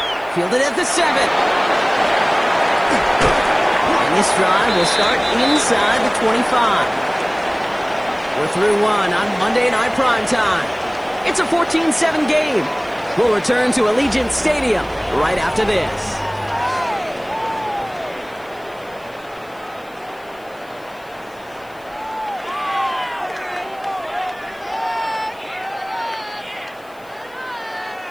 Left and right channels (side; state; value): left; noise; hiss, 28 dB below the sound